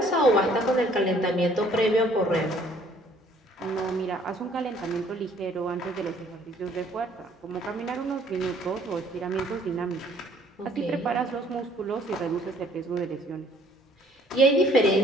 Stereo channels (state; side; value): normal; both; correlation 0.59